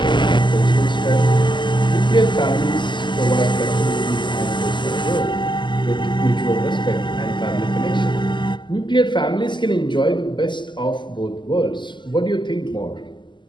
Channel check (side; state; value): right; late; 0.22 ms